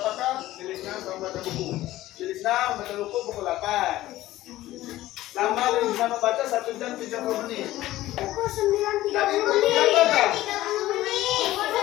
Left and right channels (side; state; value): right; quieter; 15.7 dB